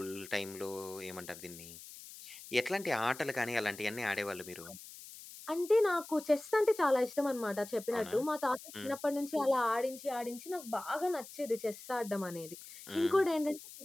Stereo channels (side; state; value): left; noise; hiss, 15 dB below the sound